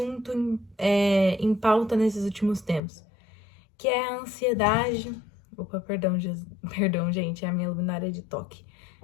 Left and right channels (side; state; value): right; drops out; at 2.8 s